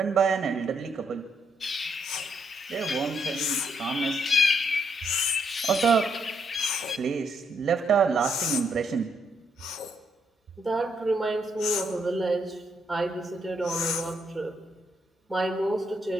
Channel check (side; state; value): both; normal; correlation 0.75